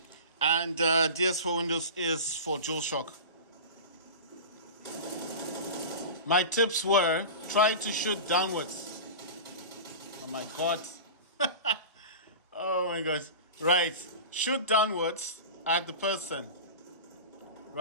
and DS for Windows is for DualShock. My tips were try to shoot downwards. Oh my god. Oh my gosh. Right. Shoot downwards at the person.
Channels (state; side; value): inverted; both; correlation -0.30